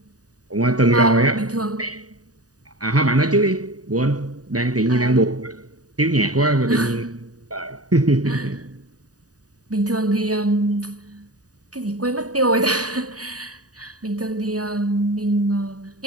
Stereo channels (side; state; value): left; late; 0.68 ms